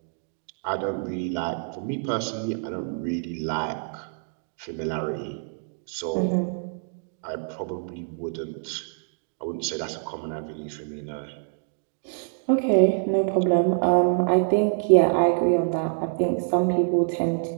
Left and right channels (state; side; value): silent; left; digital silence